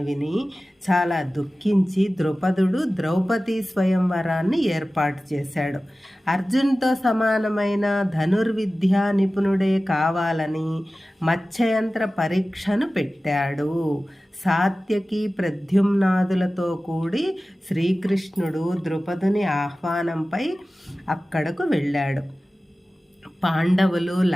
విని చాలా దుఃఖించి ద్రుపదుడు ద్రౌపది స్వయంవరాన్ని ఏర్పాటు చేశాడు. అర్జున్తో సమానమైన ధనుర్విద్యా నిపుణుడే కావాలని మత్స్యయంత్ర పరీక్షను పెట్టాడు. సాత్యకి, ప్రద్యుమ్నాదులతో కూడి శ్రీకృష్ణుడు ద్రుపదుని ఆహ్వానంపై అక్కడకు వెళ్ళాడు. పాండవులు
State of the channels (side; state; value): both; normal; correlation 0.96